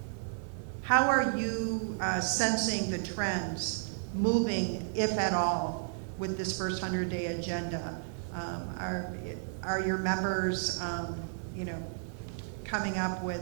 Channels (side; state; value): left; silent; 56 dB below the other